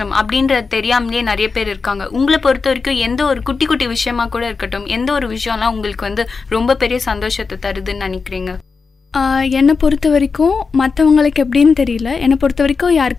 அப்படின்றது தெரியாமலே நிறைய பேர் இருக்காங்க. உங்களை பொறுத்த வரைக்கும் எந்த ஒரு குட்டி குட்டி விஷயமா கூட இருக்கட்டும், எந்த ஒரு விஷயம்லாம் உங்களுக்கு ரொம்ப பெரிய சந்தோஷத்தை தருதுன்னு நினைக்கிறீங்க? என்னை பொறுத்த வரைக்கும் மற்றவங்களுக்கு எப்படின்னு தெரியல, என்னை பொறுத்த வரைக்கும்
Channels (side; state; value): right; quieter; 4.8 dB